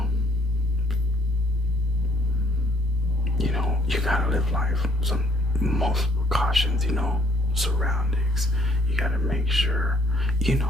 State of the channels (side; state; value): both; normal; correlation 0.63